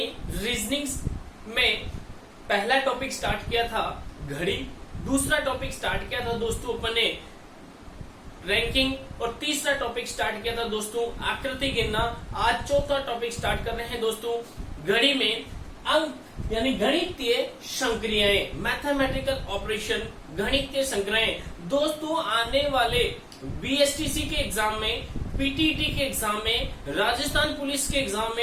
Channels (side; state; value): both; identical; correlation 1.00